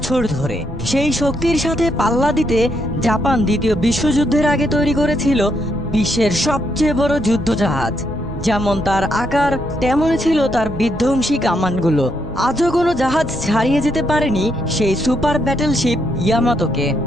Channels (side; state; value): both; normal; correlation 0.77